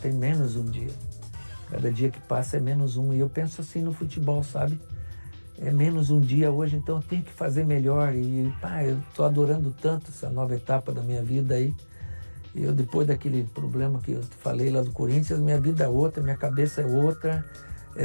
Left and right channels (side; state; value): both; inverted; correlation -1.00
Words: menos um dia. Cada dia que passa é menos um. E eu penso assim no futebol, sabe? É menos um dia hoje, então eu tenho que fazer melhor. E, eu tô adorando tanto essa nova etapa da minha vida aí. Eu, depois daquele problema que eu te falei lá do Corinthians, minha vida é outra, minha cabeça é outra.